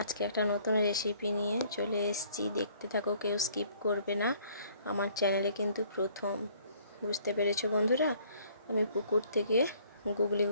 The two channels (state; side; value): inverted; both; correlation -0.59